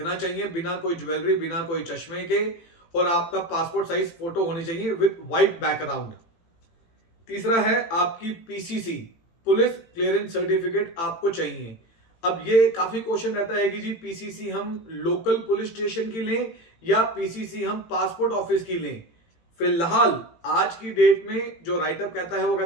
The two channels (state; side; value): late; right; 18 ms